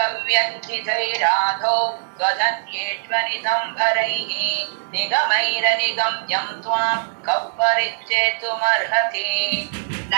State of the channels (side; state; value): left; silent; digital silence